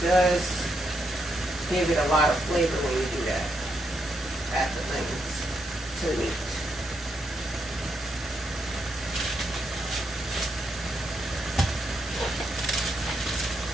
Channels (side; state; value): both; normal; correlation 0.80